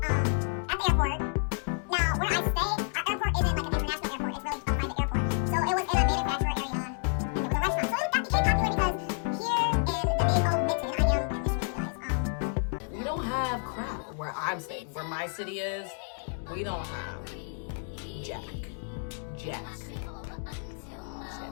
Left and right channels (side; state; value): right; silent; 58 dB below the other